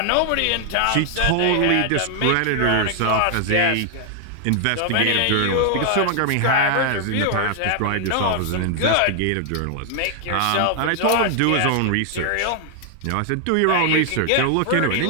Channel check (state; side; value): different; both; correlation 0.00